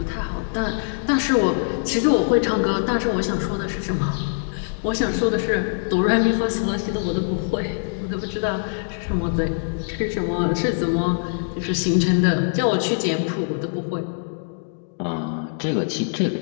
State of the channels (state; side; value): silent; right; digital silence